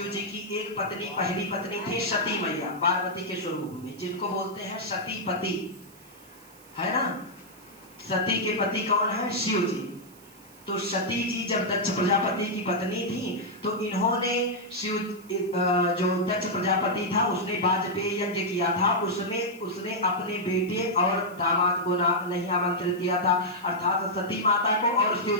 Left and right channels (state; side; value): noise; right; hiss, 24 dB below the sound